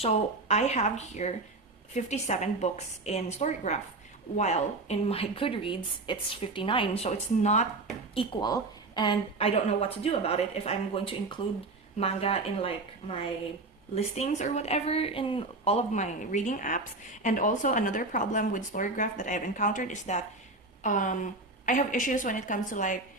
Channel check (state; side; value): quieter; left; 3.3 dB